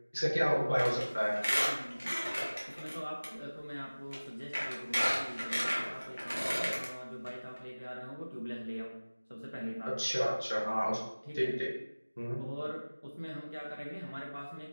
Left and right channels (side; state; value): both; inverted; correlation -1.00